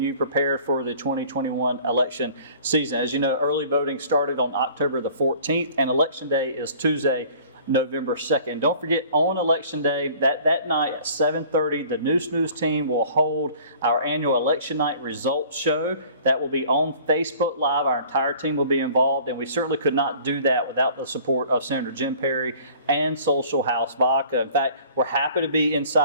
prepared for the 2021 election season. As you know, early voting started on October the 14th, and Election Day is Tuesday, November 2nd. Don't forget, on Election Day, that night at 7:30, the Neuse team will hold our annual Election Night Results Show. That will be on Facebook Live. Our entire team will be involved, and we certainly could not do that without the support of Senator Jim Perry and Social House Vodka. In fact, we're happy to be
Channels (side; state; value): both; inverted; correlation -0.50